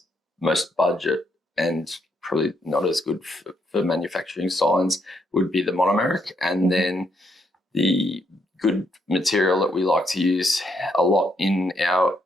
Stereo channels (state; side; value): normal; both; correlation 0.75